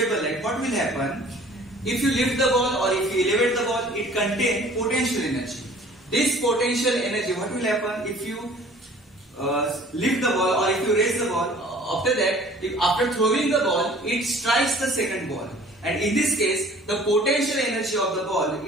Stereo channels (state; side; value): normal; both; correlation 0.50